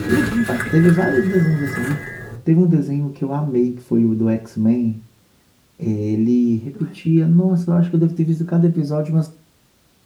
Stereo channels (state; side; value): identical; both; correlation 1.00